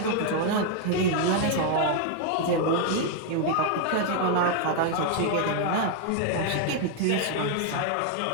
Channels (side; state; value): both; different; correlation 0.01